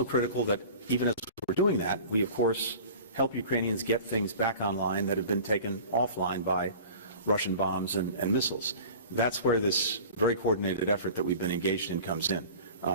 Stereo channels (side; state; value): both; inverted; correlation -0.40